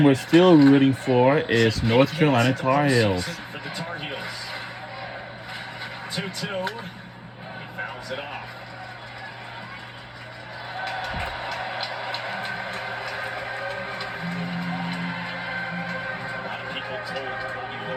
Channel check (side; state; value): both; identical; correlation 1.00